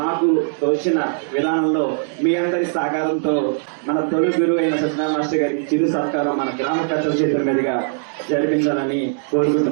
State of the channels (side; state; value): left; silent; digital silence